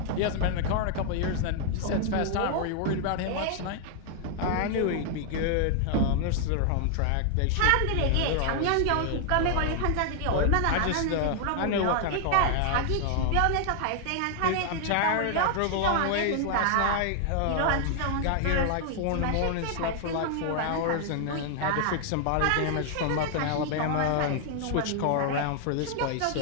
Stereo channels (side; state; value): both; different; correlation 0.00